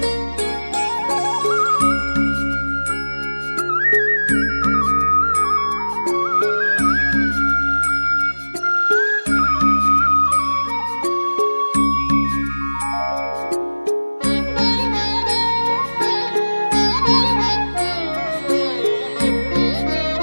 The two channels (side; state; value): both; inverted; correlation -1.00